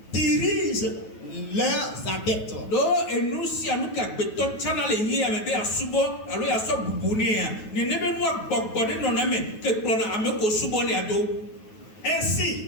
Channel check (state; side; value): late; right; 9.3 ms